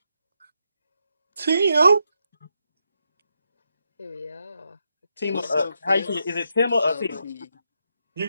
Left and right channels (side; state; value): both; inverted; correlation -0.82